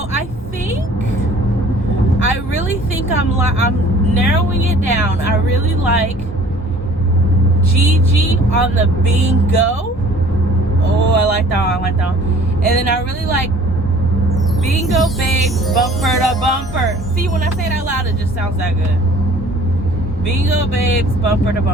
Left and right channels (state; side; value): normal; both; correlation 0.51